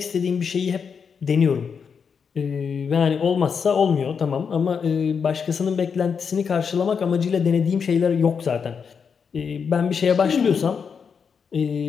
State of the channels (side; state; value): right; quieter; 6.3 dB